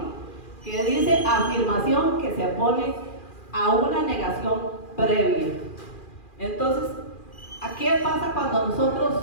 que dice afirmación que se opone a una negación previa. Entonces, ¿qué pasa cuando nosotros,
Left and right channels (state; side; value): late; right; 2.4 ms